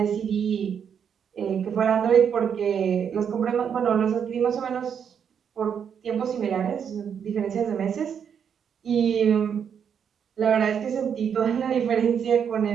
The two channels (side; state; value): left; quieter; 7.7 dB